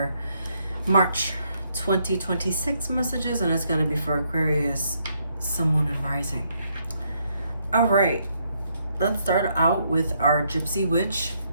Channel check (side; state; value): both; inverted; correlation -0.74